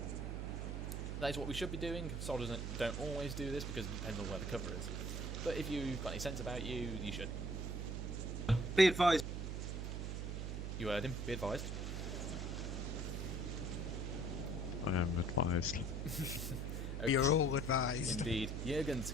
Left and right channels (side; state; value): right; noise; hum, 3 dB below the sound